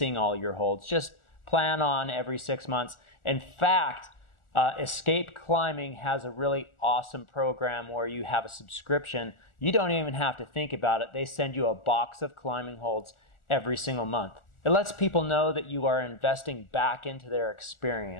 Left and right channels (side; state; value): right; late; 1.4 ms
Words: all your holds, just plan on every 6 months. In fact, Escape Climbing has a really awesome program where you have a subscription. You don't even have to think about it. They send you a box of climbing holds every single month. It lets people know that you are investing back into their